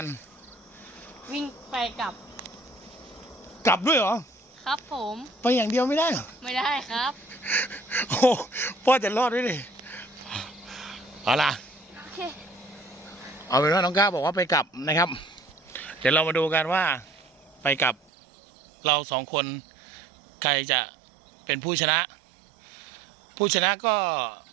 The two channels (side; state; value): left; drops out; at 17.9 s